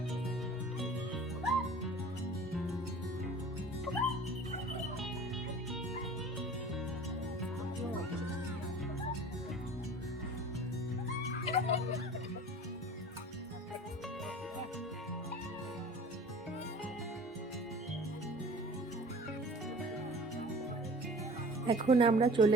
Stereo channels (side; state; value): both; normal; correlation 0.44